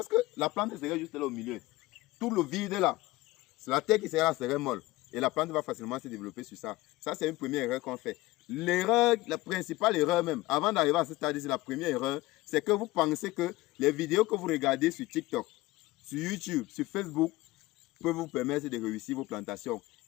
que la plante serait juste là au milieu. Tout le vide là, c'est la terre qui serait là, serait molle. Et la plante va facilement se développer sur ça. Ça, c'est une première erreur qu'on fait. L'erreur, la principale erreur même, avant d'arriver à ce stade, c'est la première erreur, c'est que vous pensez que les vidéos que vous regardez sur TikTok, sur YouTube, sur Facebook, peuvent vous permettre de réussir vos plantations.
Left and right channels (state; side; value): quieter; right; 19.2 dB